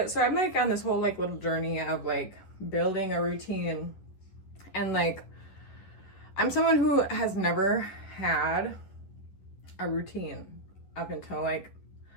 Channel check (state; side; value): late; right; 11 ms